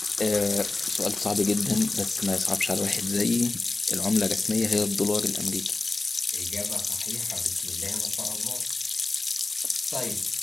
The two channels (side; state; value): right; quieter; 3.3 dB